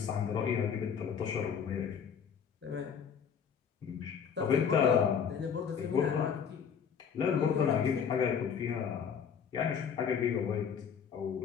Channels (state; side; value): quieter; right; 7.2 dB